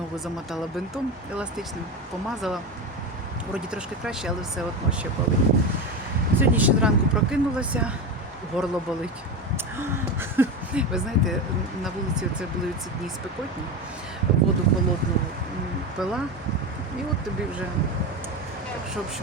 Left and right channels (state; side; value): normal; both; correlation 0.19